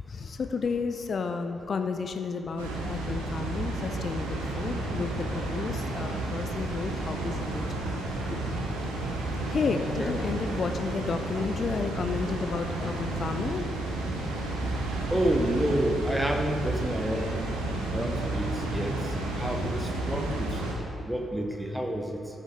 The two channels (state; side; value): normal; both; correlation 0.76